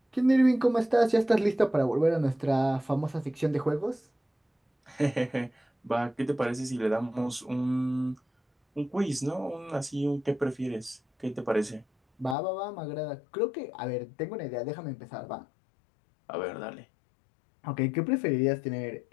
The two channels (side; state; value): right; drops out; at 12.4 s